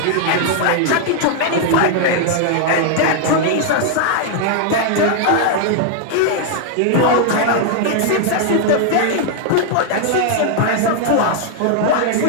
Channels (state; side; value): different; both; correlation 0.00